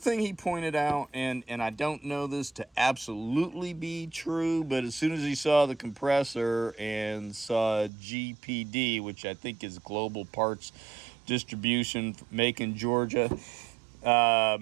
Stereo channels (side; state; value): left; drops out; at 7.9 s